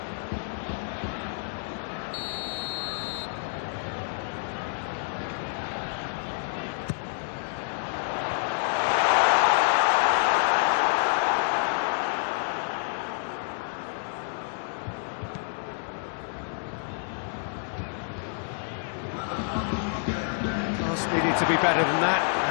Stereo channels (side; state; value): right; silent; 59 dB below the other